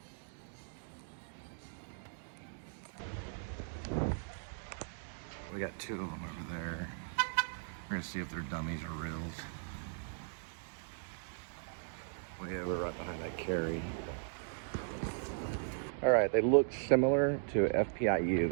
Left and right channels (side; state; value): left; silent; digital silence